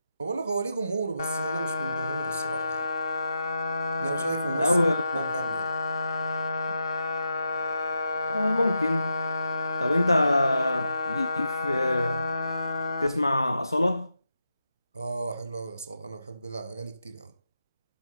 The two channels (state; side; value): inverted; both; correlation -0.86